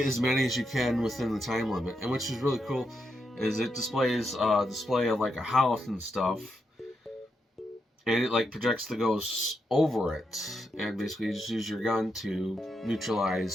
as many as you can within the time limit. And which is really cool is it displays display of like a house and stuff, and it like projects the ghosts over it, and basically you just use your gun to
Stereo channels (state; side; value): normal; both; correlation 0.83